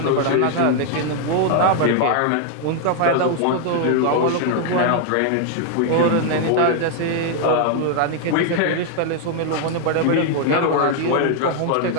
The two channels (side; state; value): both; different; correlation 0.00